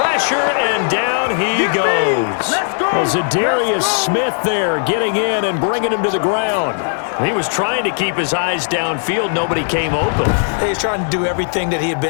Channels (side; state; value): right; silent; digital silence